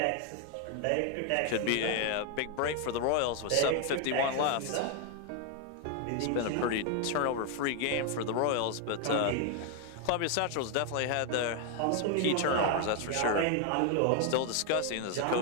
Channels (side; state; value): both; different; correlation 0.01